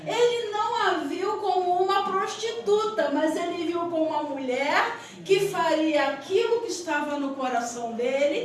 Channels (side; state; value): both; identical; correlation 1.00